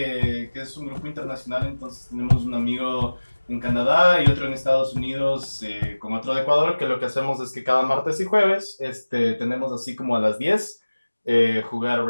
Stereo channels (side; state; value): both; inverted; correlation -1.00